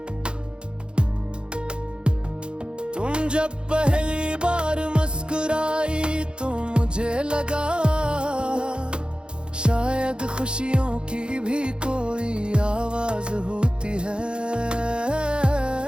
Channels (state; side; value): late; left; 0.052 ms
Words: तुम जब पहली बार मुस्कुराई तो मुझे लगा शायद खुशियों की भी कोई आवाज होती है।